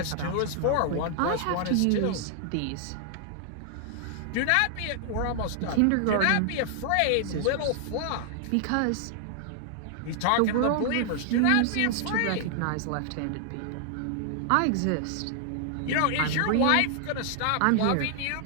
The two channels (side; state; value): both; different; correlation 0.00